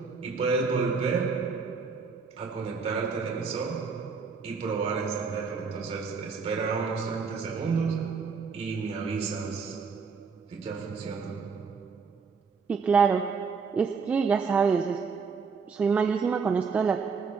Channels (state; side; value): quieter; left; 5.3 dB